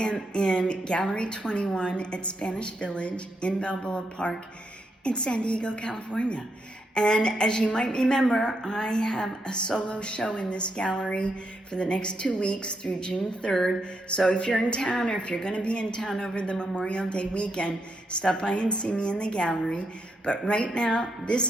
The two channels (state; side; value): normal; both; correlation 0.81